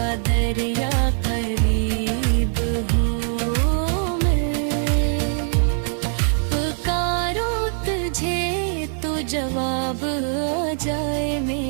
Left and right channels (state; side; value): silent; left; 64 dB below the other